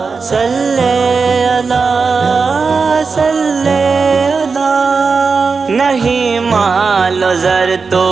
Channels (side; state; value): left; quieter; 4.8 dB